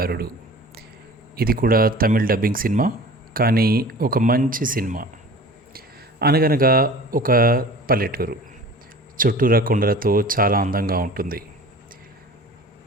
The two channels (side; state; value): both; normal; correlation 0.42